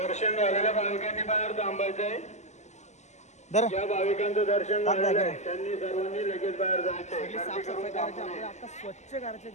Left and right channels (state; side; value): late; right; 0.33 ms